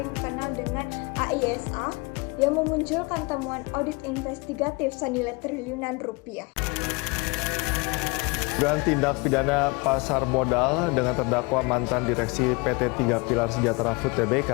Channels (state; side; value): quieter; right; 28.0 dB